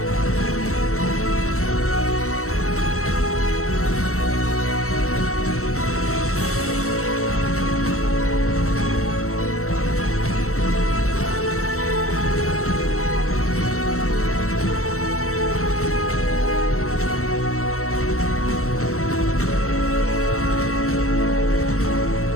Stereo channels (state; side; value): late; right; 0.63 ms